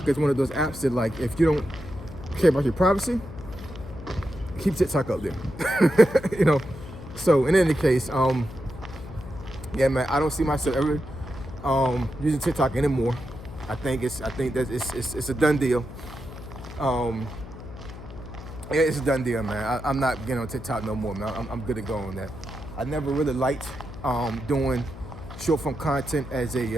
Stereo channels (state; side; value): noise; left; hum, 13 dB below the sound